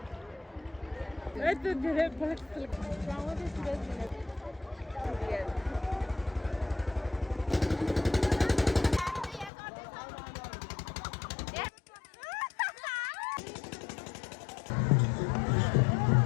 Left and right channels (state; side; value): drops out; right; at 9.5 s